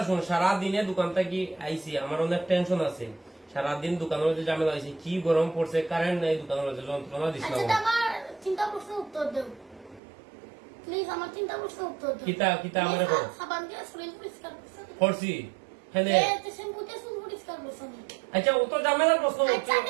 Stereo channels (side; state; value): left; drops out; at 10.0 s